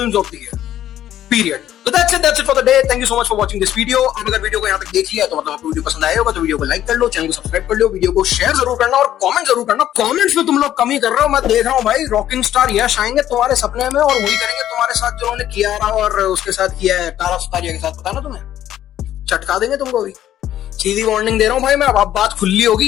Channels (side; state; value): right; quieter; 11.9 dB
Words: of the year. Period. So that's it for the day. Thank you so much for watching this video. आप अगर वीडियो को यहाँ तक देख लिया तो मतलब आपको वीडियो पसंद आया होगा तो वीडियो को लाइक कर लो, चैनल को सब्सक्राइब कर लो, वीडियो को शेयर जरूर करना और कमेंट जरूर करना। कमेंट्स में तुम लोग कमी कर रहे हो, मैं देख रहा हूँ भाई। रॉकिंग स्टार यश आएंगे तुम्हारे सपने में और वही करेंगे तुम्हारे साथ जो उन्होंने कियारा और उसके साथ किया है तारा सुतारिया के साथ। पता ना तुम्हें, चटका देंगे तुमको भी। सीधी वार्निंग दे रहा हूँ भाई मैं, अब बात खुली